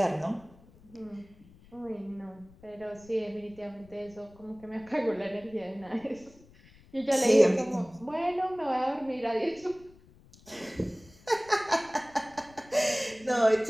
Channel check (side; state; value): left; noise; rumble, 25 dB below the sound